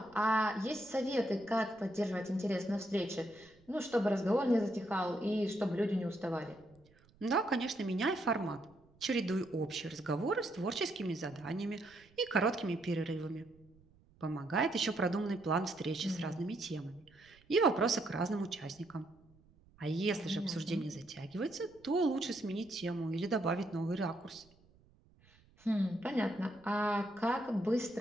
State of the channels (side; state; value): right; noise; rumble, 29 dB below the sound